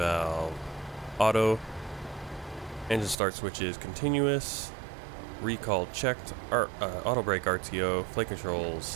auto, engine start switches continuous, recall checked, auto brake RTO, flight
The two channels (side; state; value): left; drops out; at 3.2 s